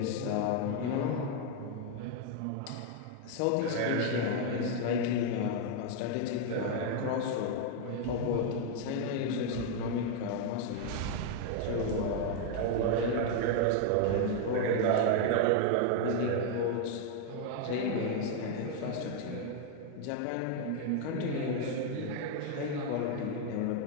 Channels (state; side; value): different; both; correlation 0.00